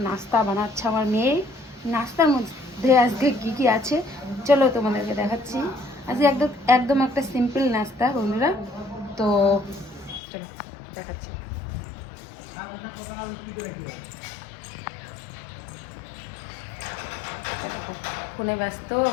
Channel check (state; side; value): drops out; right; at 10.2 s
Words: নাস্তা বানাচ্ছে আমার মেয়ে। নাস্তার মধ্যে আজকে কী কী আছে চলো তোমাদেরকে দেখাচ্ছি। আজকে একদম একদম একটা সিম্পল নাস্তা বন্ধুরা, তো চলো দেখাচ্ছি। ফোনে ব্যস্ত